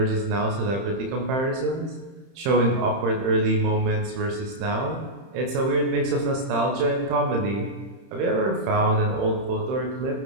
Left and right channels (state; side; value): late; left; 31 ms